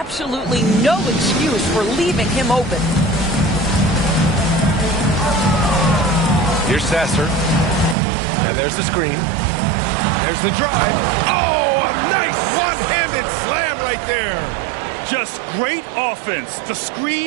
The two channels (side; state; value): left; drops out; at 8.0 s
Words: no excuse for leaving him open. Here's Sasser. And there's the screen. There's the drive. Oh, a nice one-handed slam right there. Just great offense. The